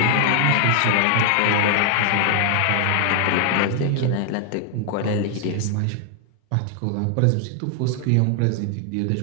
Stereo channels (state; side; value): different; both; correlation 0.00